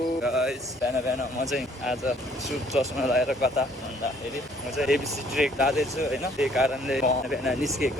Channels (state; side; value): normal; both; correlation 0.61